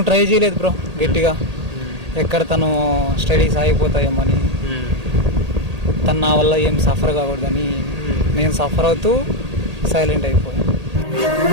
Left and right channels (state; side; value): late; left; 1.8 ms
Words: ట్రై చేయలేదు బ్రో గట్టిగా, ఎక్కడ తను స్టడీస్ ఆగిపోతాయేమని. తను నా వల్ల ఏం సఫర్ కాకూడదని నేను సఫర్ అవుతూ సైలెంట్ అయిపోయాను.